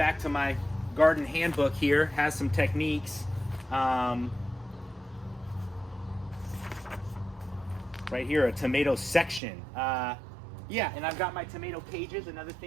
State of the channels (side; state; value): left; drops out; at 9.4 s